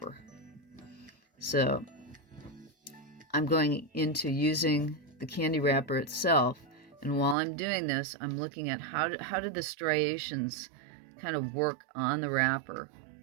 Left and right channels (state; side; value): drops out; left; at 7.4 s